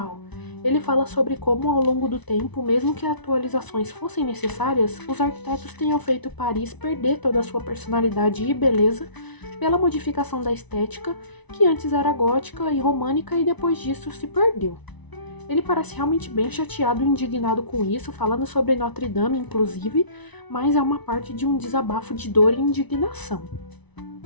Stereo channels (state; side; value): late; right; 1.0 ms